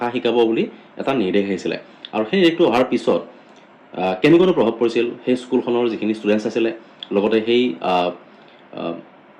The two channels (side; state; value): both; identical; correlation 1.00